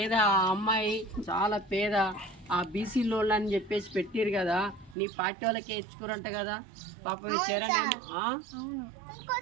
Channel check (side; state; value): left; drops out; at 5.0 s